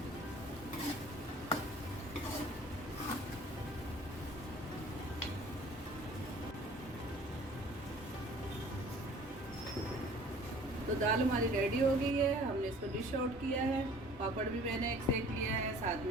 तो दाल हमारी रेडी हो गई है, हमने इसको डिश आउट किया है। पापड़ भी मैंने एक सेक लिया है, साथ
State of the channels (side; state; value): both; normal; correlation 0.50